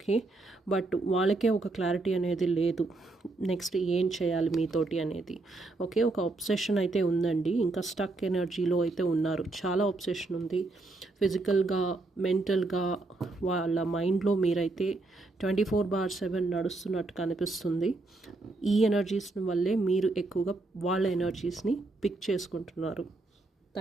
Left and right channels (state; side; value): quieter; left; 3.2 dB